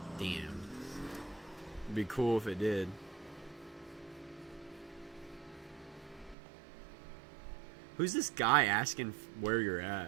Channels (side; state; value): left; drops out; at 6.4 s